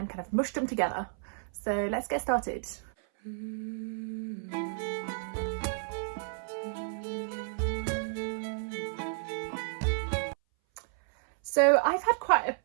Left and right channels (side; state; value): left; silent; 57 dB below the other